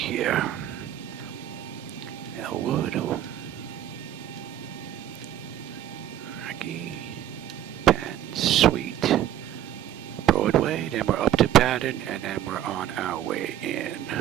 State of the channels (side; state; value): left; quieter; 11.8 dB